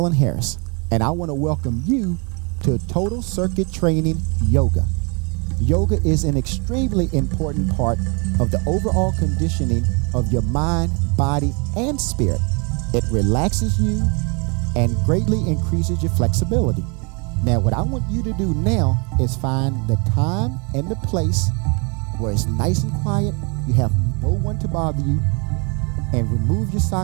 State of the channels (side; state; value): left; quieter; 32.7 dB